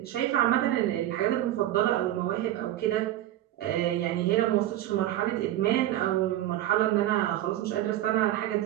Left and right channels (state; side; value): quieter; left; 13.5 dB